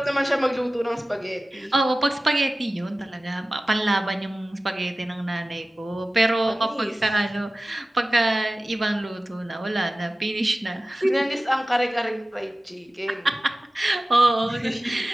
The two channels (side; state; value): both; normal; correlation 0.96